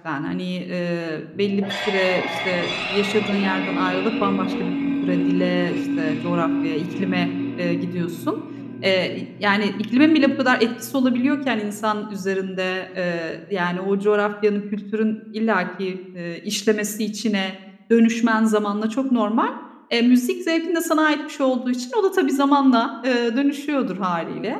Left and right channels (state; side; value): identical; both; correlation 1.00